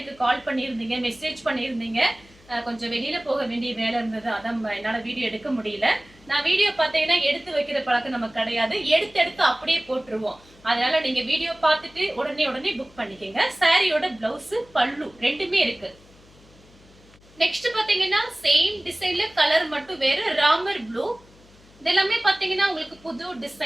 கால் பண்ணியிருந்தீங்க, மெசேஜ் பண்ணியிருந்தீங்க. கொஞ்சம் வெளியில போக வேண்டிய வேலை இருந்தது, அதான் என்னால வீடியோ எடுக்க முடியல. நான் வீடியோ பாத்தீங்கன்னா எடுத்து வைக்கிற பழக்கம் நமக்கு கிடையாது. எடுத்து அப்படியே போட்டுருவோம். அதனால நீங்க வீடியோ பார்த்துட்டு உடனே புக் பண்ணிக்கங்க. சாரியோட பிளவுஸ், பல்லு ரெண்டுமே இருக்கு. நெக்ஸ்ட் பாத்தீங்கன்னா சேம் டிசைன்ல கலர் மட்டும் வேற, ராமர் ப்ளூ. இதெல்லாமே பாத்தீங்கன்னா உங்களுக்கு புது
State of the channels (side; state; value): left; noise; hum, 26 dB below the sound